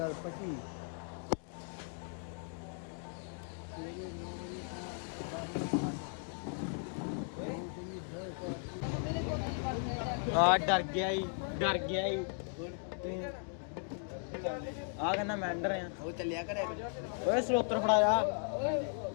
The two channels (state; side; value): silent; right; 53 dB below the other